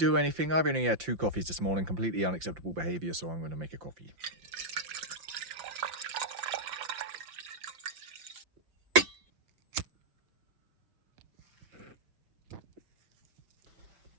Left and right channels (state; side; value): late; left; 5.8 ms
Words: anything, I've only had 2 coffees this morning. Completely unacceptable behavior, so I'm going to make a coffee.